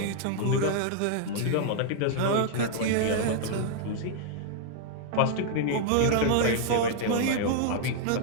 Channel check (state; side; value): different; both; correlation -0.01